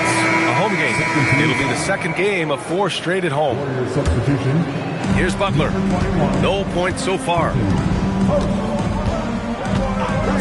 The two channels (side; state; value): both; identical; correlation 1.00